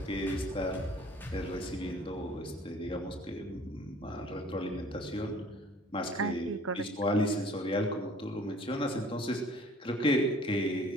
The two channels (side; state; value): both; normal; correlation 0.52